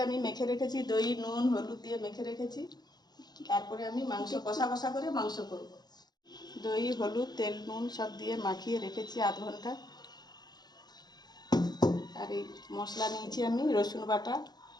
আমি মেখে রেখেছি, দই নুন হলুদ দিয়ে মেখে রেখেছি। তারপরে আমি মাংস কষা করে মাংস করব। দই হলুদ তেল নুন সব দিয়ে মাখিয়ে রেখেছি আধ ঘন্টা। আর এই মশলা নিয়েছি আমি রসুন বাটা,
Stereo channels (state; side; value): late; right; 0.20 ms